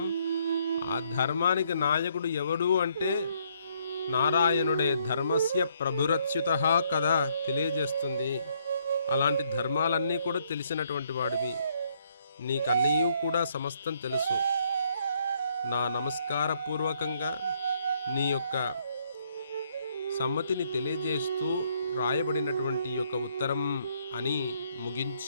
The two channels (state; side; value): inverted; both; correlation -0.70